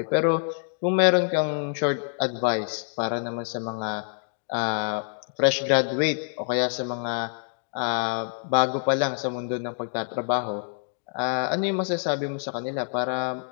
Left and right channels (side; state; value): right; silent; digital silence